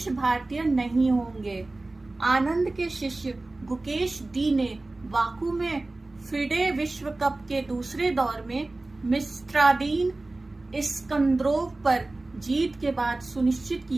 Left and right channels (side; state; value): left; quieter; 3.0 dB